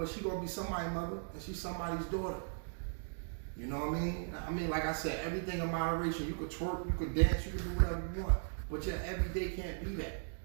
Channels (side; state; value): left; silent; digital silence